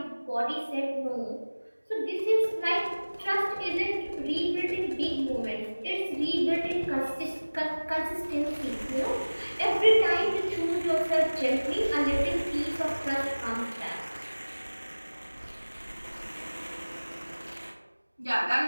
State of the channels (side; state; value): both; inverted; correlation -1.00